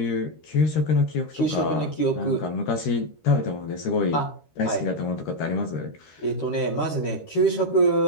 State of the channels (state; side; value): late; right; 13 ms